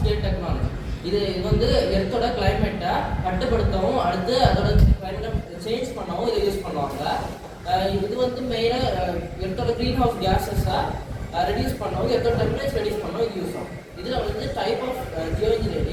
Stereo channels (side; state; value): both; identical; correlation 1.00